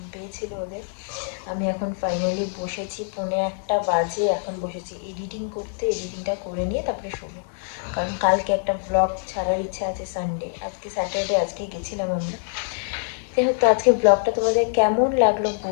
পেয়েছিল ওদের। আমি এখন ফাইনালি বসেছি, 1:45 বাজে, এখন বসেছি এডিটিং করতে, এডিটিংটা করে নিয়ে তারপরে শোবো, কারণ কালকে একটা ব্লগ ছাড়ার ইচ্ছা আছে সানডে, আজকে স্যাটারডে, আজকেই গেছিলাম আমরা। যাই হোক, তো আজকে ব্লগটা তোমাদের কেমন লাগলো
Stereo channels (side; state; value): right; silent; 62 dB below the other